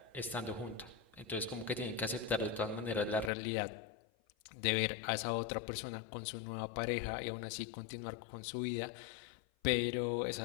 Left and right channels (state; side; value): drops out; right; at 3.3 s